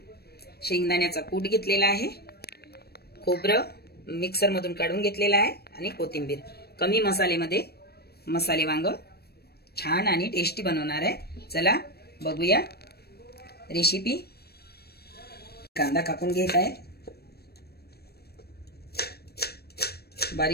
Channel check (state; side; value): late; right; 0.46 ms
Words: शेंगदाण्याचा कूट घेतलेला आहे, खोबरं मिक्सर मधून काढून घेतलेला आहे आणि कोथिंबीर. कमी मसालेमध्ये मसाले वांग छान आणि टेस्टी बनवणार आहे. चला बघूया रेसिपी. कांदा कापून घेत आहे.